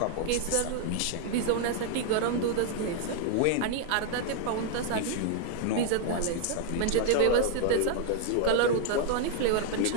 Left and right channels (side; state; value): both; different; correlation 0.00